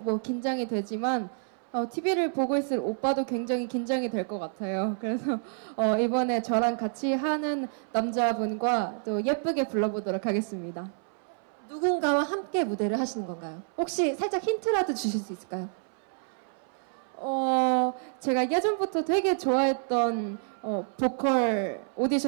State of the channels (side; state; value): left; silent; 59 dB below the other